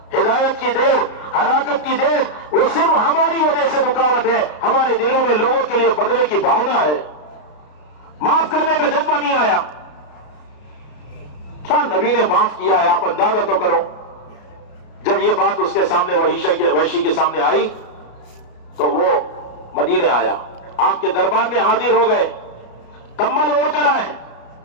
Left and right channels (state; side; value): late; right; 33 ms